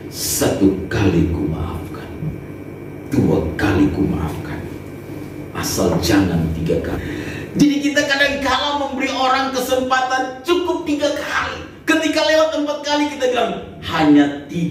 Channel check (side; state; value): both; identical; correlation 1.00